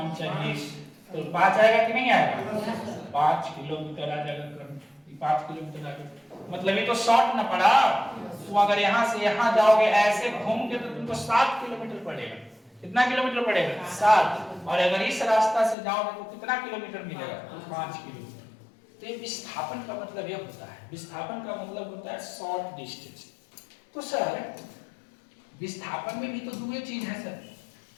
चाहिए, तो 5 आएगा कि नहीं आएगा? 5 किलोमीटर आ जाएगा कर्म, 5 किलोमीटर आ जाएगा। मतलब ये तो शॉर्ट ना पड़ा। तो अगर यहाँ से यहाँ जाओगे ऐसे घूम के तो तुमको 7 किलोमीटर पड़ेगा। कितना किलोमीटर पड़ेगा? 7। और अगर इस रास्ता से जाओगे तो कितना किलोमीटर मिलेगा? 5 किलोमीटर। तो ये विस्थापन का मतलब ये होता है, विस्थापन का मतलब होता है शॉर्ट डिस्टेंस। तो सर विस्थापन में भी तो दो चीज है सर,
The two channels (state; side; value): drops out; right; at 15.8 s